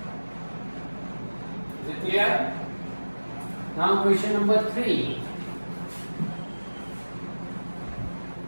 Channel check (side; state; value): both; inverted; correlation -1.00